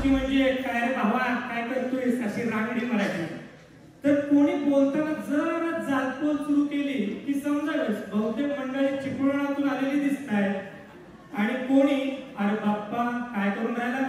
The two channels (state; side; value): identical; both; correlation 1.00